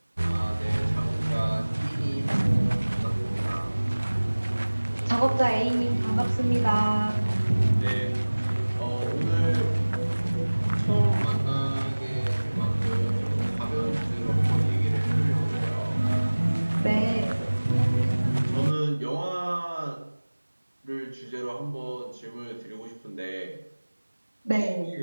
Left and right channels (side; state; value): both; inverted; correlation -1.00